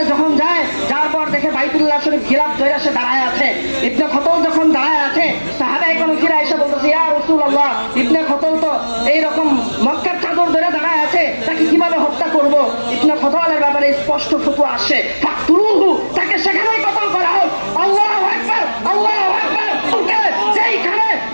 যখন যায়, যার পর দেখে বাইতুল্লাহ শরীফ গিলাফ ধরে সে দাঁড়ায় আছে। ইবনে খতল যখন দাঁড়ায় আছে, সাহাবায়ে কেরাম ফিরে এসে বলতেছে, ইয়া রাসূলুল্লাহ, ইবনে খতল তো এইরকম মক্কার চাদর ধরে দাঁড়ায় আছে, তাকে কিভাবে হত্যা করব? ইবনে খতলের ব্যাপারে স্পষ্ট ফতোয়া আসে, ফাকতুলুহু, তাকে সেখানেই কতল করা হোক। আল্লাহু আকবার, আল্লাহু আকবার। যেইখানে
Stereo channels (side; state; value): both; inverted; correlation -1.00